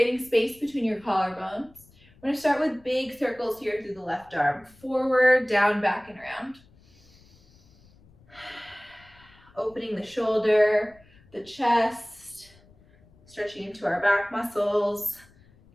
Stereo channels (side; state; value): left; noise; rumble, 28 dB below the sound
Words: space between your collarbones. We're gonna start with big circles here through the left arm. Forward, down, back, and around. Opening the shoulder, the chest, stretching into our back muscles.